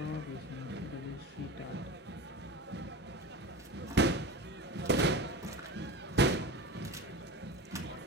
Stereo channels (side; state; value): both; normal; correlation 0.29